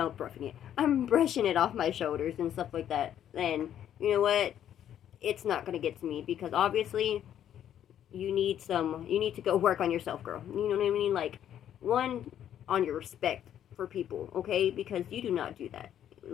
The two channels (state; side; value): quieter; right; 10.4 dB